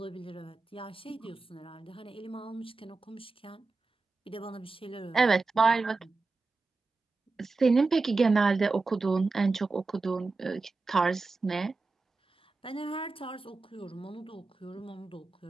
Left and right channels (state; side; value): quieter; left; 3.8 dB